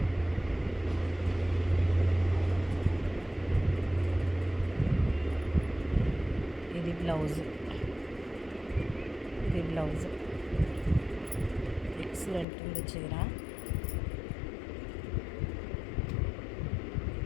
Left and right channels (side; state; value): right; drops out; at 12.5 s